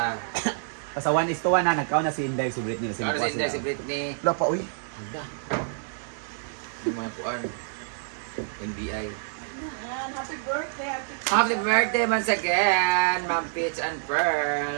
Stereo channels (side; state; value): left; silent; digital silence